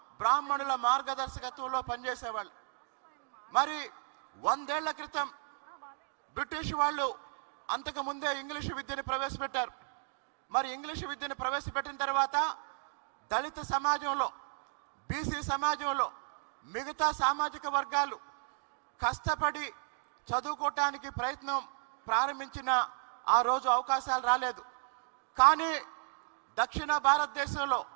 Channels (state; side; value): silent; left; digital silence